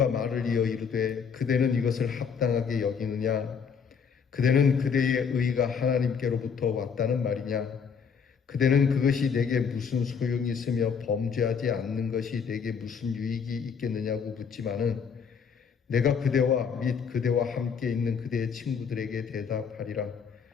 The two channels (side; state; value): right; quieter; 6.4 dB